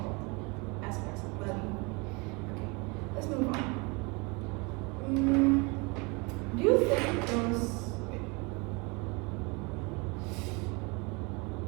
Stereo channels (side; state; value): left; quieter; 28.6 dB